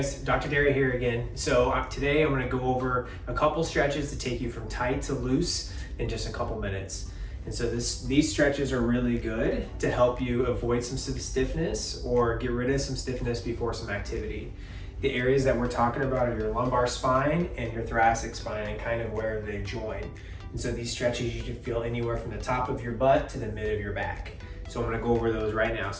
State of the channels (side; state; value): both; identical; correlation 1.00